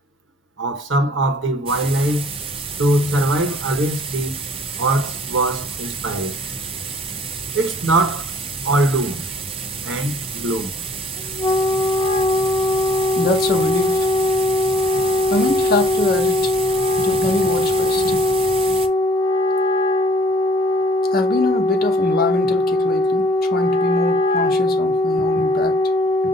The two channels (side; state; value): both; normal; correlation 0.57